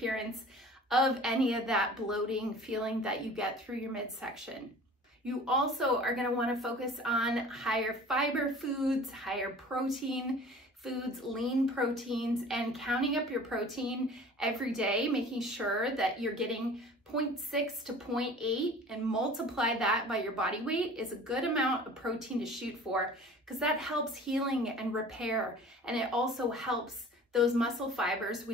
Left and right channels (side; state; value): both; normal; correlation 0.44